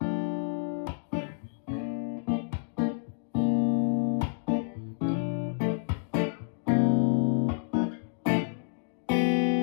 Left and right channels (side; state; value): right; silent; digital silence